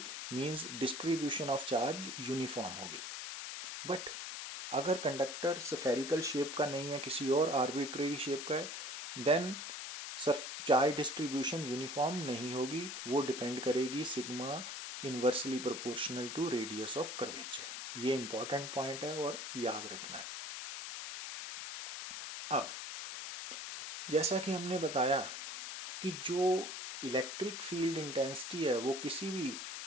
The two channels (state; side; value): noise; left; hiss, 6 dB below the sound